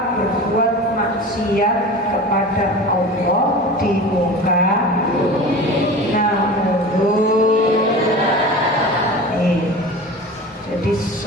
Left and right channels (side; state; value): both; normal; correlation 0.34